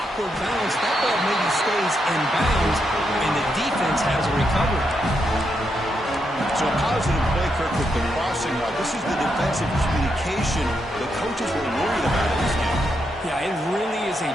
bounce. That ball maybe stays in bounds, and the defense has a recovery. So a positive play, Kirk, with the crossing route. This is the defensive communication the coaches were worried about in this game. Yeah, it really is a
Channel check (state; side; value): normal; both; correlation 0.81